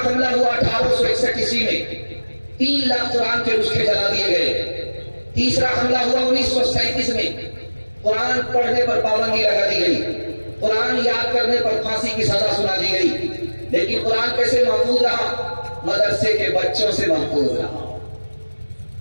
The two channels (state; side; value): inverted; both; correlation -1.00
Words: حملہ ہوا 1861 عیسوی میں، 3 لاکھ قرآن کے نسخے جلا دیے گئے۔ تیسرا حملہ ہوا 1937 میں، قرآن پڑھنے پر پابندی لگا دی گئی، قرآن یاد کرنے پر پھانسی کی سزا سنا دی گئی۔ لیکن قرآن کیسے محفوظ رہا؟ مدرسے کے بچوں سے محفوظ رہا،